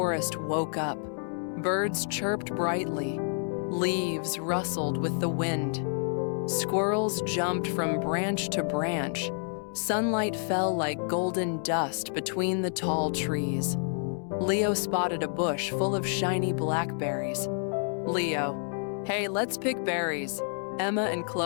woke up. Birds chirped brightly. Leaves rustled with the wind. Squirrels jumped from branch to branch. Sunlight fell like golden dust between the tall trees. Leo spotted a bush full of shiny blackberries. "Leo, hey, let's pick berries." Emma and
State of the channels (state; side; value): silent; right; 59 dB below the other